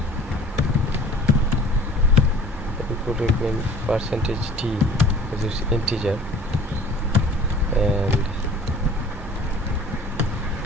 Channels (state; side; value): normal; both; correlation 0.48